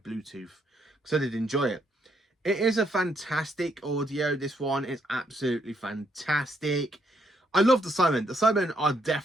Bluetooth, because I did enjoy it. It is a fantastic audio, this one. It's absolutely fantastic. I love the Cybermen. The Cybermen are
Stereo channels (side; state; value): both; normal; correlation 0.74